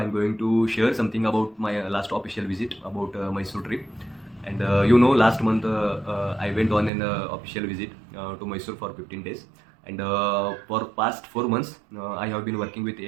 going to share something about my last official visit about Mysore trip. And last month I went on an official visit to Mysore for 15 days. And for past 4 months, I have been working with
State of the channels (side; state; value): left; drops out; at 6.9 s